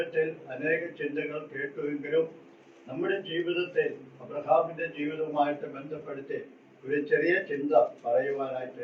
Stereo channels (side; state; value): both; identical; correlation 1.00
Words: അനേക ചിന്തകൾ കേട്ടുവെങ്കിലും നമ്മുടെ ജീവിതത്തിൽ അബ്രഹാമിന്റെ ജീവിതവുമായിട്ട് ബന്ധപ്പെടുത്തി ഒരു ചെറിയ ചിന്ത